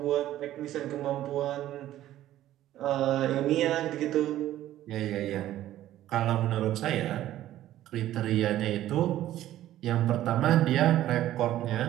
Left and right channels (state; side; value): quieter; left; 13.5 dB